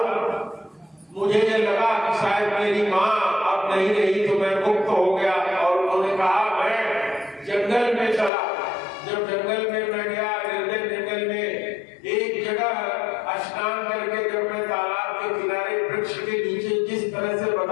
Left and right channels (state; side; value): drops out; right; at 8.3 s